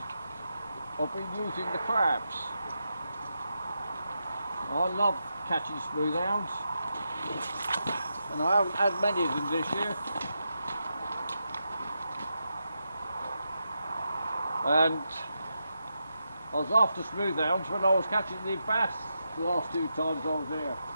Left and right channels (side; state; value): both; inverted; correlation -0.86